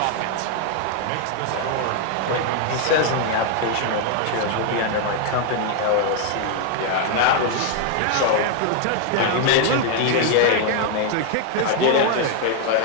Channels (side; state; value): both; different; correlation 0.00